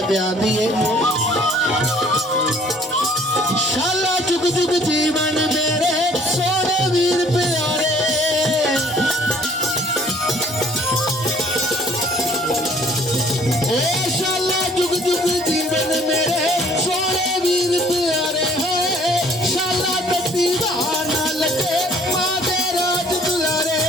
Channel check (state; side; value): normal; both; correlation 0.57